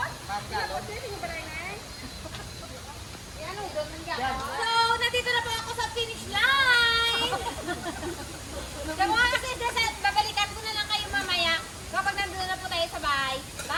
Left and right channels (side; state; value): both; identical; correlation 1.00